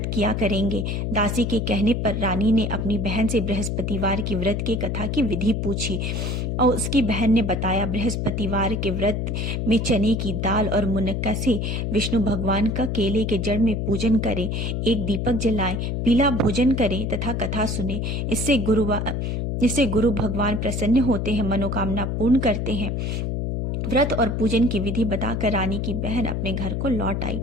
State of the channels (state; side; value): noise; left; hum, 1 dB below the sound